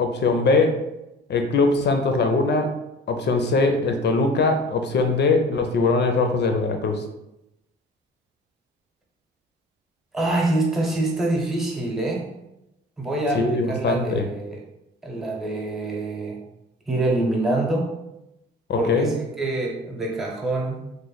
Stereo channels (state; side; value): normal; both; correlation 0.43